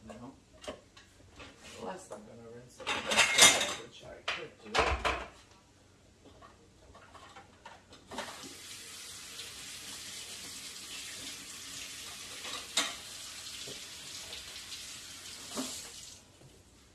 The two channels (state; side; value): identical; both; correlation 1.00